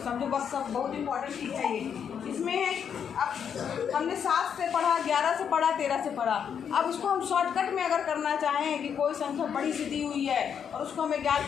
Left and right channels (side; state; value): right; quieter; 7.7 dB